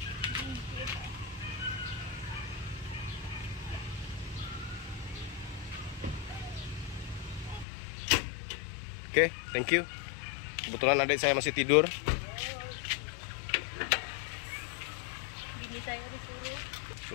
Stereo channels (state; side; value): drops out; right; at 7.7 s